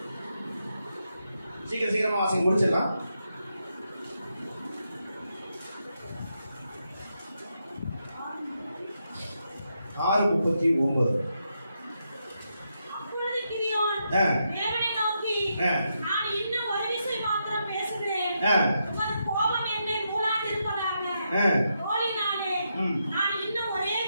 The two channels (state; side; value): inverted; both; correlation -0.82